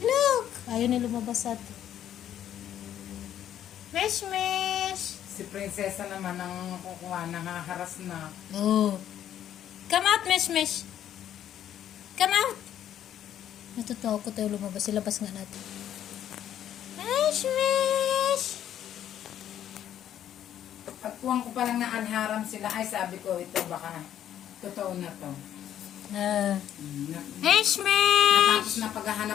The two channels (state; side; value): quieter; right; 10.7 dB